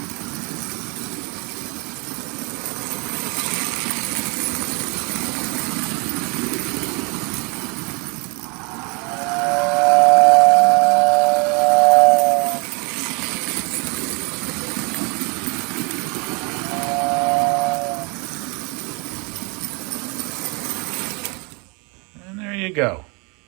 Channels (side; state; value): left; quieter; 31.1 dB